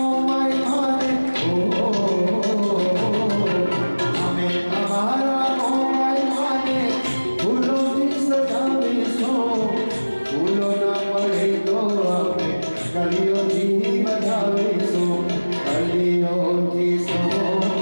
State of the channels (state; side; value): inverted; both; correlation -1.00